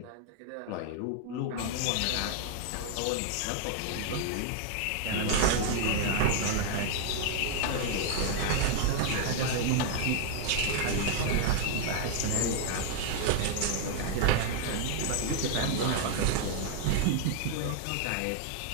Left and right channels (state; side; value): different; both; correlation 0.00